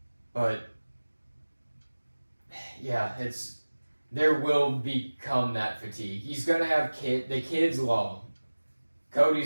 But yeah, there will become that fatigue. He's gonna have the kids love him.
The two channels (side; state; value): both; inverted; correlation -1.00